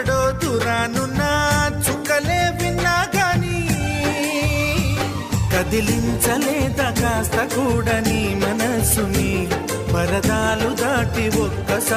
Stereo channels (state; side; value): identical; both; correlation 1.00